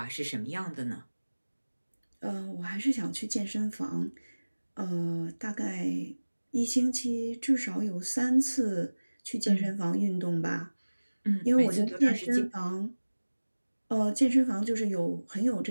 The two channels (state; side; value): inverted; both; correlation -1.00